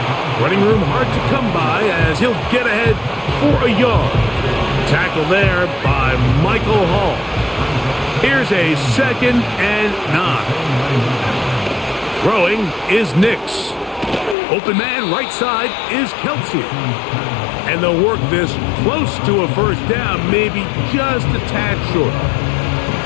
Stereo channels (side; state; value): right; drops out; at 14.4 s